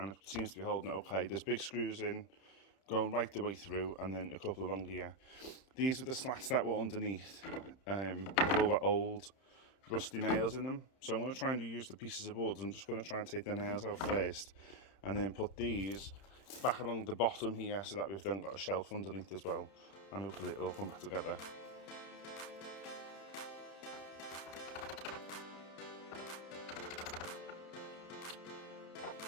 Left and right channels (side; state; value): right; late; 31 ms